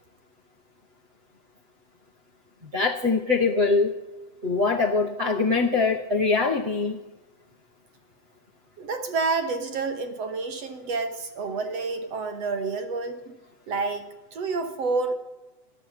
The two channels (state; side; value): late; left; 7.9 ms